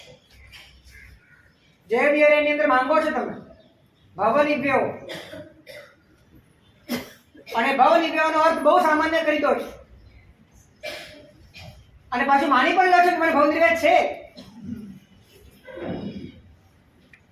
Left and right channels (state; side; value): identical; both; correlation 1.00